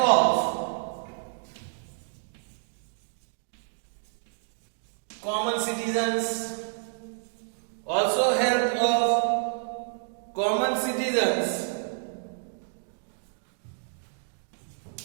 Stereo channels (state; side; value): silent; left; digital silence